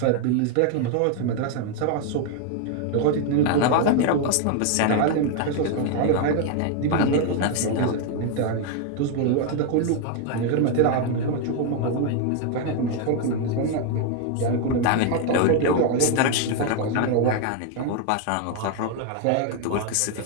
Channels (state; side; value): different; both; correlation 0.00